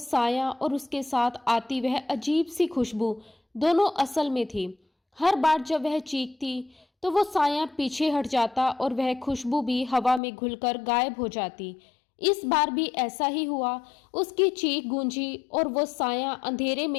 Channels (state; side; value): drops out; right; at 10.2 s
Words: और उसके साथ आती वह अजीब सी खुशबू दोनों असल में थी। हर बार जब वह चीखती तो वो साया पीछे हट जाता और वह खुशबू भी हवा में घुलकर गायब हो जाती। इस बार भी ऐसा ही हुआ। उसकी चीख गूंजी और वो साया अंधेरे